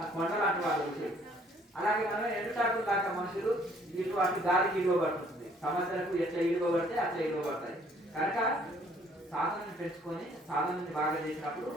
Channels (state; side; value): normal; both; correlation 0.61